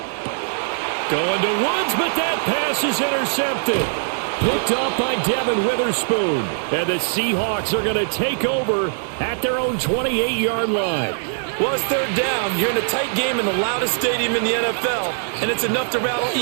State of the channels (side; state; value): left; silent; 64 dB below the other